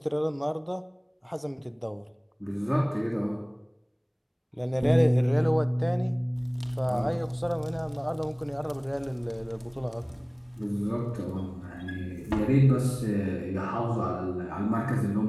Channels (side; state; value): both; identical; correlation 1.00